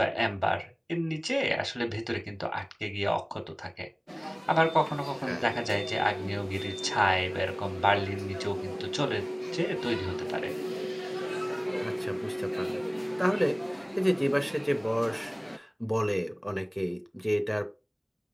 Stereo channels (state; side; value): identical; both; correlation 1.00